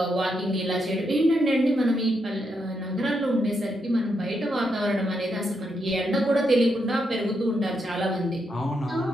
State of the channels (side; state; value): both; normal; correlation 0.81